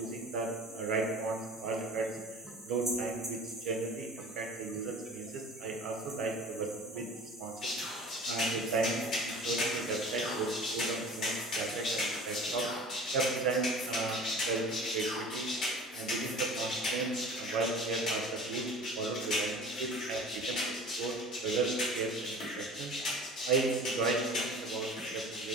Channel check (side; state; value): both; normal; correlation 0.41